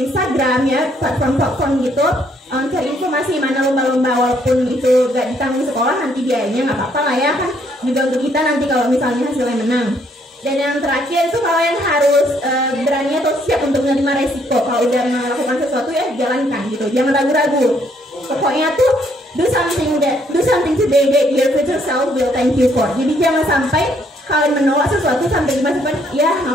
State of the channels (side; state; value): both; normal; correlation 0.68